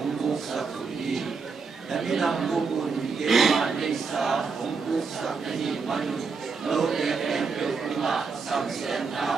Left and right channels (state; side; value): quieter; left; 5.0 dB